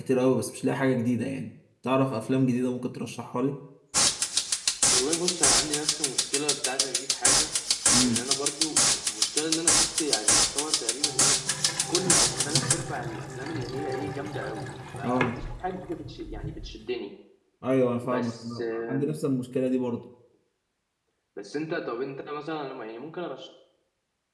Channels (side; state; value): both; identical; correlation 1.00